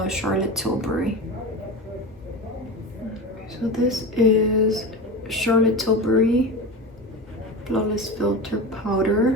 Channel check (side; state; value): both; normal; correlation 0.26